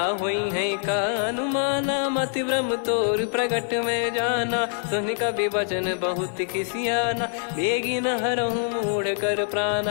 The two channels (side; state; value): right; silent; 62 dB below the other